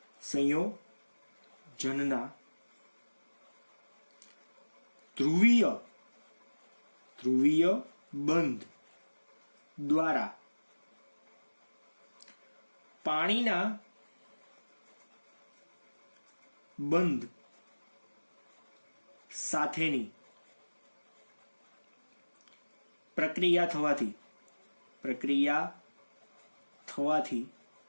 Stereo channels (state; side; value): inverted; both; correlation -1.00